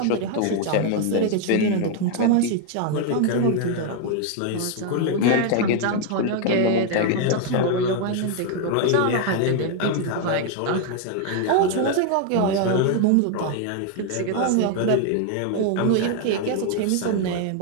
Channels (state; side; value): different; both; correlation 0.00